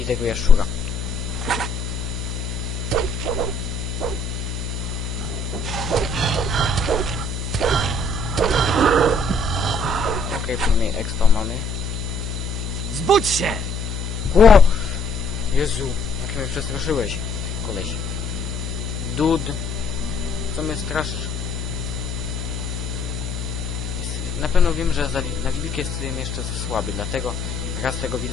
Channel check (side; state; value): left; noise; hum, 4 dB below the sound